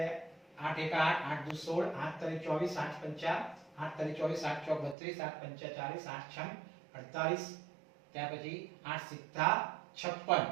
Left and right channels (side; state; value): left; drops out; at 5.0 s